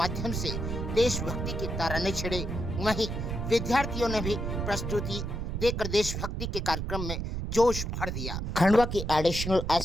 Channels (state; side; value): noise; right; rumble, 3 dB below the sound